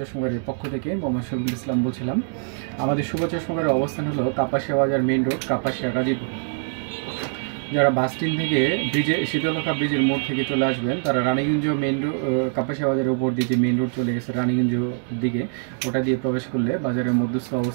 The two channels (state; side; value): silent; left; 63 dB below the other